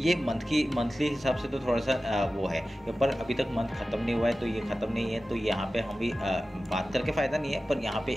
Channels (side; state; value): both; normal; correlation 0.95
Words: मंथली हिसाब से तो थोड़ा सा वो है, पर अभी तक मंथ खत्म नहीं हुआ है, तो ये खत्म नहीं है। तो यहाँ पे हम भी बात करके फ़ायदा नहीं है, पर यहाँ पे